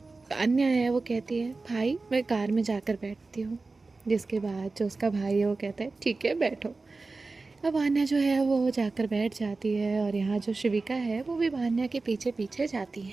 अन्य है वो कहती है, भाई मैं कार में जाकर बैठती हूँ। जिसके बाद जो उसका भाई है वो कहता है, ठीक है बैठो। अब वान्या जो है वो जाकर बैठ जाती है और यहाँ जो शिविका है वो भी वान्या के पीछे पीछे जाती है।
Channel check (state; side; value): quieter; left; 3.7 dB